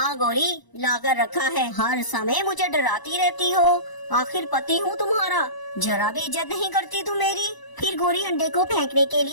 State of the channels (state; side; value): late; right; 1.0 ms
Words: गोरी, लाकर रखा है। हर समय मुझे डराती रहती हो। आखिर पति हूँ तुम्हारा, जरा भी इज्जत नहीं करती तुम मेरी। फिर गोरी अंडे को फेंकने के